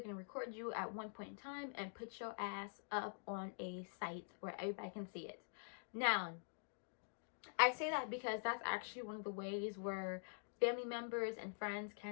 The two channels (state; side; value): silent; right; digital silence